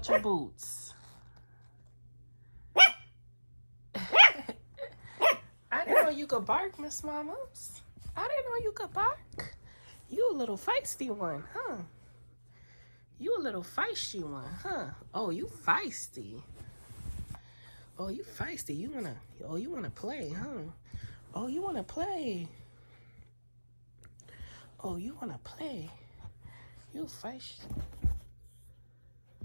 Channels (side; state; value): both; inverted; correlation -1.00